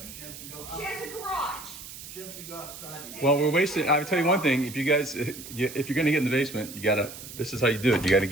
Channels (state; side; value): noise; right; hiss, 13 dB below the sound